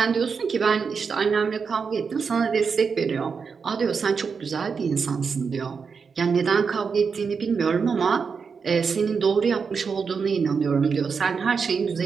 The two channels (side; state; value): left; quieter; 5.6 dB